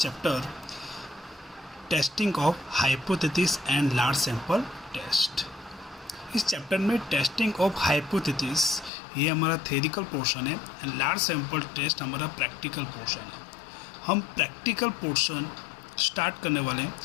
testing of hypothesis and large sample test. इस चैप्टर में टेस्टिंग ऑफ हाइपोथेसिस ये हमारा थ्योरिटिकल पोर्शन है एंड लार्ज सैंपल टेस्ट हमारा प्रैक्टिकल पोर्शन है। हम प्रैक्टिकल पोर्शन स्टार्ट करने वाले हैं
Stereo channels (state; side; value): drops out; right; at 8.9 s